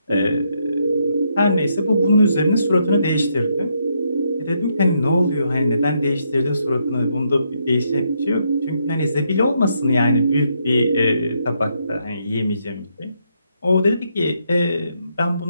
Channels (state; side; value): inverted; both; correlation -0.77